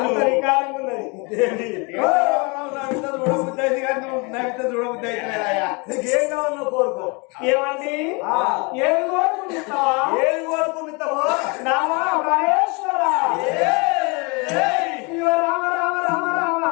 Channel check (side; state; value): right; quieter; 30.1 dB